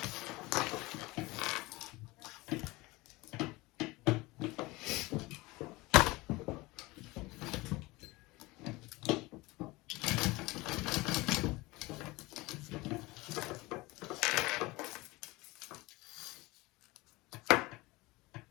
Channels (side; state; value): right; quieter; 21.9 dB